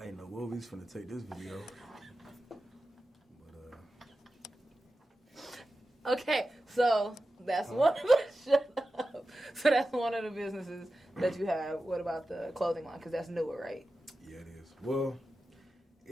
know what we was finna take this video. Okay, so that's one of the shut up. So that's one of the businesses that you have. What about the clothing line? Because that's newer, right? Yeah, it is. Well,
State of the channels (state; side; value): normal; both; correlation 0.93